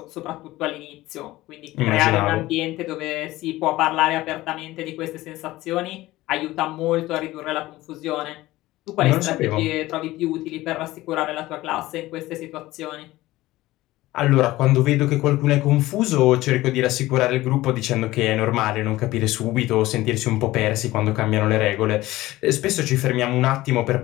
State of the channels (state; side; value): quieter; right; 17.6 dB